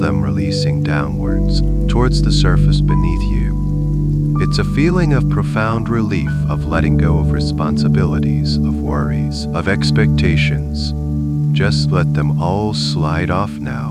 releasing downwards, towards the surface beneath you. It's a feeling of profound relief, of letting go of responsibilities, of worries, of expectations. Just let them all slide off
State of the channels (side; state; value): both; identical; correlation 1.00